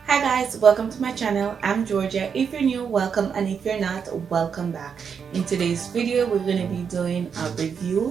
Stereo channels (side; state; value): left; quieter; 6.7 dB